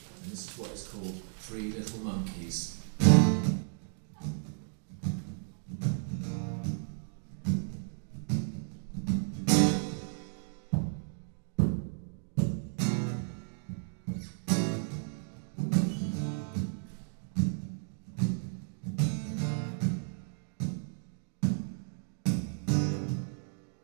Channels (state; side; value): silent; left; digital silence